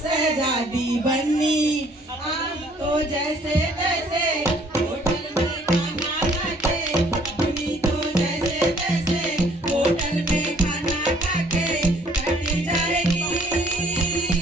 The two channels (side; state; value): both; normal; correlation 0.60